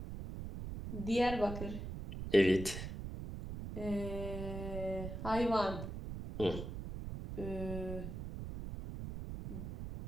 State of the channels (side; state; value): right; noise; rumble, 7 dB below the sound